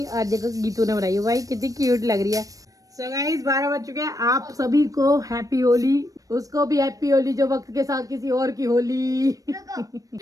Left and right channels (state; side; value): late; left; 0.17 ms